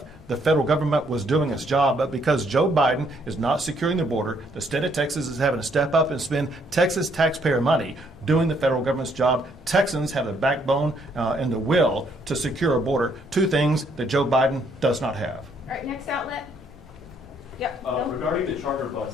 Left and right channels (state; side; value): normal; both; correlation 0.69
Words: the federal government was doing its job, but because Joe Biden is not securing the border, the state of Texas is having to step up and spend Texas taxpayer money doing the federal government's job. Texans have the backbone and the will to secure a border, two things that Joe Biden does not have. All right, next outlet. Yep. Regarding the charter